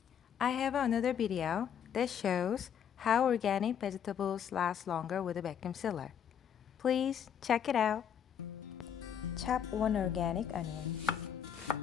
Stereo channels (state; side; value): quieter; right; 8.5 dB